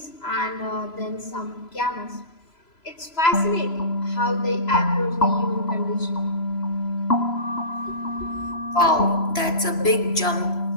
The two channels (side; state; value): right; late; 3.0 ms